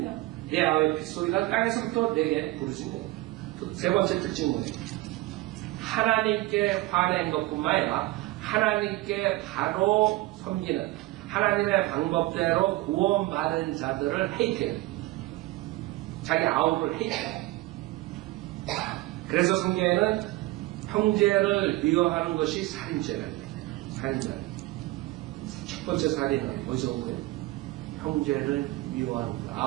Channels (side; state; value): left; quieter; 19.0 dB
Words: 내 아우의 핏소리가 땅에서부터 내게 부르짖네. 세 번째 특징은 뭐예요? 하나님께 화낸 것뿐만 아니라 하나님께 바로 섬기는 하나님의 방법대로 구원받은 자들을 헤이트해요. 자기 아우를 헤이트해요. 그래서 성경에는 형제를 미워하는 것이 살인죄라고 해요. 살인죄. 첫 번째 살인은 어디서 온 거예요? 형제를 미워하는 것,